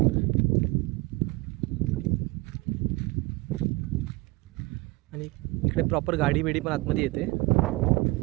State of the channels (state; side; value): quieter; left; 22.8 dB